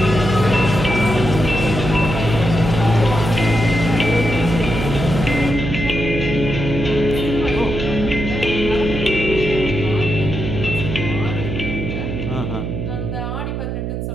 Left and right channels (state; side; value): noise; right; hum, 4 dB below the sound